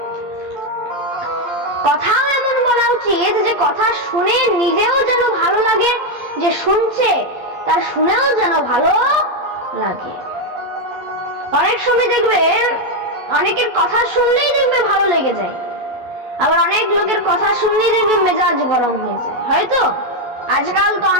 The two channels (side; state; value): left; late; 11 ms